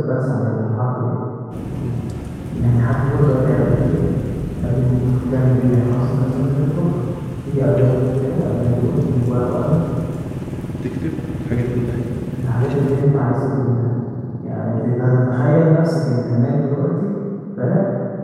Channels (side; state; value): both; identical; correlation 1.00